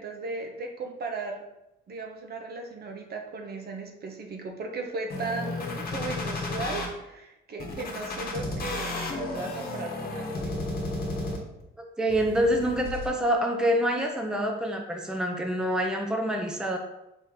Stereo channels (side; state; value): both; normal; correlation 0.50